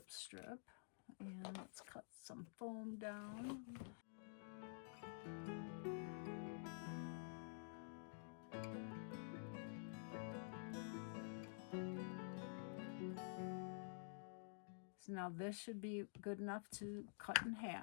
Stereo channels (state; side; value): silent; right; digital silence